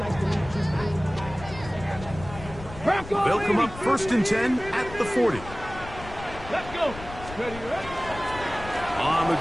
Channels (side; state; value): left; noise; rumble, 14 dB below the sound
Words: to meet you. They'll come up 1st and 10 at the 40. Let's go. Ready. On the